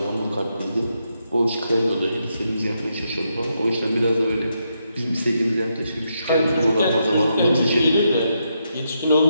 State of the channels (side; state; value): both; inverted; correlation -0.81